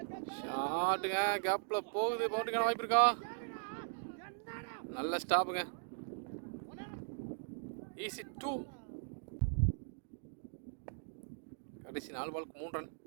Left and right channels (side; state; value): left; silent; digital silence